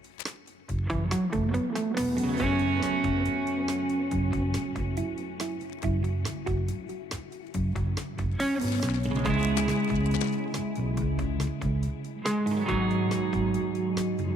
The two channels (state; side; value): normal; both; correlation 0.77